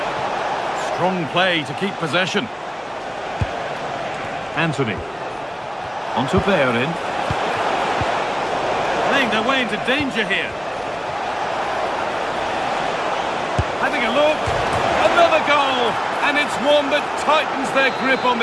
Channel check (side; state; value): both; identical; correlation 1.00